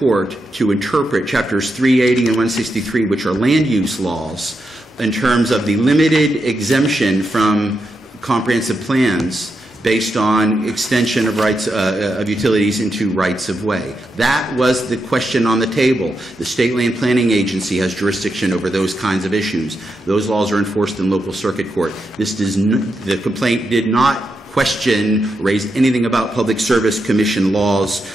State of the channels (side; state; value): both; normal; correlation 0.85